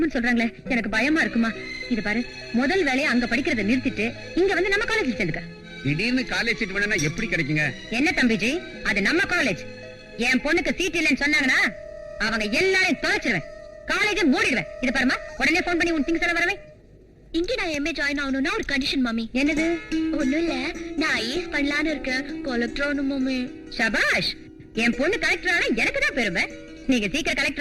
சொல்றாங்களே, எனக்கு பயமா இருக்குமா. இது பாரு, முதல் வேலையை அங்க படிக்கிறத நிறுத்திட்டு இங்க வந்து நம்ம காலேஜ்ல சேர்ந்துக்க. திடீர்னு காலேஜ் சீட் வேணும்னா எப்படி கிடைக்குங்க? என்ன தம்பிஜி, அது நம்ம காலேஜ். என் பொண்ணுக்கு சீட் இல்லைன்னு சொன்னாங்கன்னா அவங்க எல்லாரையும் தொலைச்சிருவேன், காலேஜை மூடிடுவேன். இது பாருமா, உடனே போன் பண்ணி உன் திங்ஸ் எல்லாம் வரவே. இங்க நான் எம்ஏ ஜாயின் ஆகணும்னா ஒரு கண்டிஷன் மம்மி. என்னது? ஒண்ணும் இல்ல, நான் ஐஏஎஸ் பண்ணலான்னு இருக்கேன். கலெக்டர் ஆகணும் மம்மி. சபாஷ், என் பொண்ணு கலெக்டர் ஆனா எனக்கு தான் பெருமை. நீங்க சீக்கிரம்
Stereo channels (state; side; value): identical; both; correlation 1.00